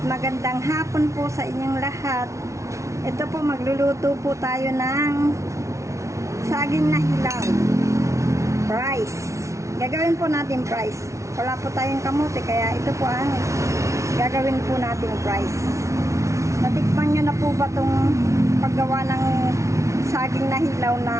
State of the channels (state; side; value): late; left; 0.14 ms